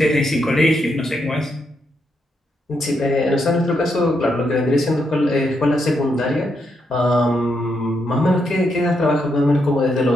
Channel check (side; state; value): both; normal; correlation 0.80